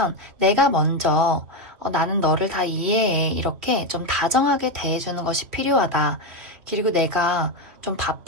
내가 먼저 나는 너를 다 이해해 이렇게 좀 다정하게 대해주는 것이 필요하다. 그리고 내가 좀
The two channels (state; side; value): late; left; 3.1 ms